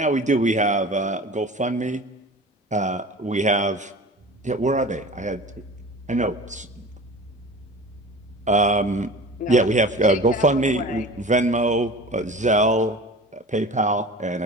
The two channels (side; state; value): both; normal; correlation 0.38